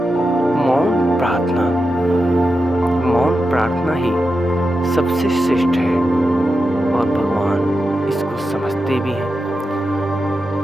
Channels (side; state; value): both; normal; correlation 0.89